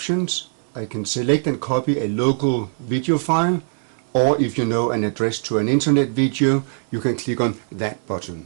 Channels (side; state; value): left; silent; digital silence